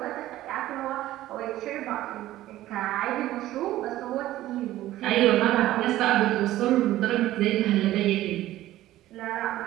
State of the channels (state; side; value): quieter; left; 14.9 dB